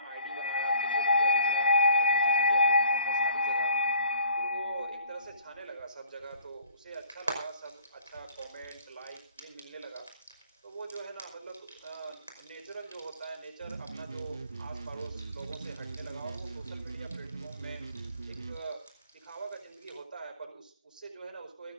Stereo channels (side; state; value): both; inverted; correlation -0.55